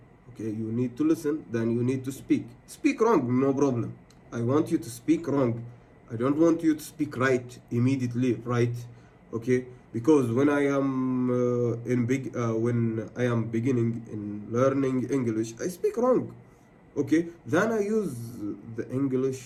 okay? You need to listen, then you need to speak wrong, no problem. I want you to speak wrong. I don't want you to speak right immediately, right? Okay? Because when I am when I am beginning in learning English, I speak wrong. Okay? Then I use the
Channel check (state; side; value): identical; both; correlation 1.00